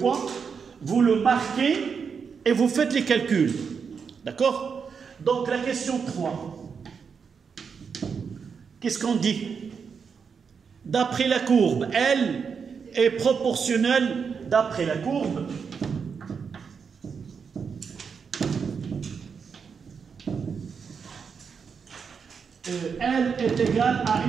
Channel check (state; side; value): quieter; left; 6.1 dB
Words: vous le marquez et vous faites les calculs. D'accord? Donc, la question 3. Qu'est-ce qu'on dit? D'après la courbe, L est proportionnelle d'après la courbe. L est égale à